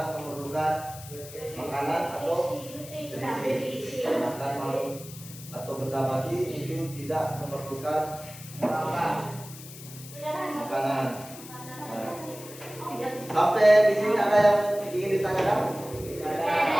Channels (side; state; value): left; noise; hiss, 15 dB below the sound